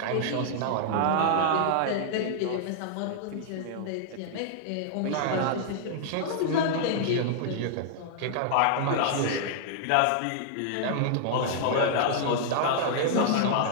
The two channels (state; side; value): different; both; correlation -0.01